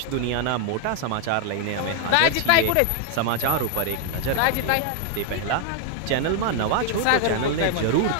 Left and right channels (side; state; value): both; different; correlation 0.00